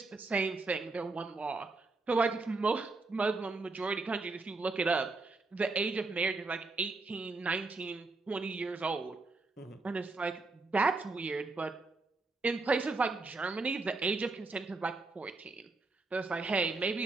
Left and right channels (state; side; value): quieter; left; 3.7 dB